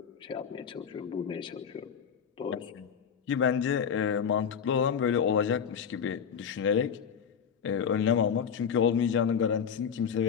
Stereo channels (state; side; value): quieter; right; 7.3 dB